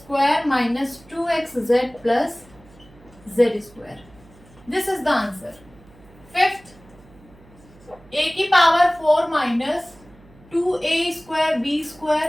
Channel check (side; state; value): right; noise; hum, 25 dB below the sound